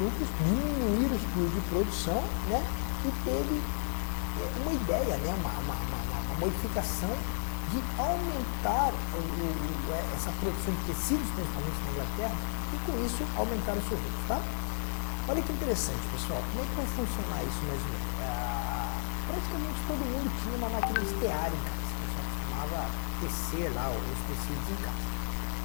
diminuir os custos de produção, né? E teve uma ideia, né? Uma modificação de aumentar essa produção de tecidos, principalmente na Inglaterra, e com isso aumentar os seus lucros, tá? Olha que interessante, pessoal. Como é que vai funcionar isso mais ou menos? Praticamente todo mundo tinha uma máquina de tear em casa. O pessoal costumava tecer lá os tecidos em casa.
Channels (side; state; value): right; silent; digital silence